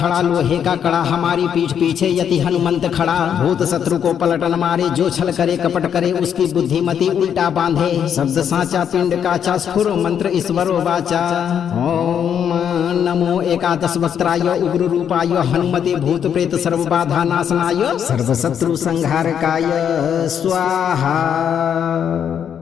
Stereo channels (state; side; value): quieter; right; 8.4 dB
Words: लोहे का कड़ा, हमारी पीठ पीछे यति हनुमंत खड़ा। भूत शत्रु को पलटन मारे, जो छल करे कपट करे, उसकी बुद्धिमति उल्टा बांधे। शब्द साचा पिंड काचा, स्फुर मंत्र ईश्वरो वाचा। ओम नमो एकादश वक्त्राय, उग्र रूपाय, हनुमते भूत प्रेत सर्व बाधा नाशनाय, सर्व शत्रु संहारकाय स्वाहा।